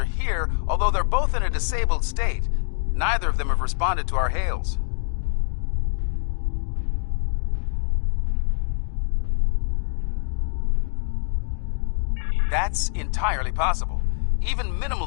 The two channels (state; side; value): silent; right; digital silence